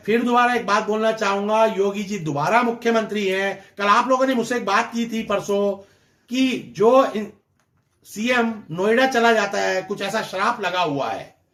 फिर दोबारा एक बात बोलना चाहूंगा, योगी जी दोबारा मुख्यमंत्री हैं। कल आप लोगों ने मुझसे एक बात की थी परसों कि जो सीएम नोएडा चला जाता है, कुछ ऐसा श्राप लगा हुआ है,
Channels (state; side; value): identical; both; correlation 1.00